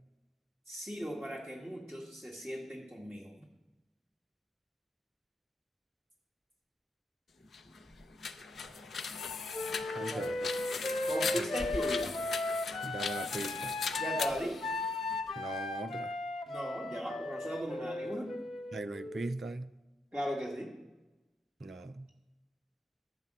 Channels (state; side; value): normal; both; correlation 0.80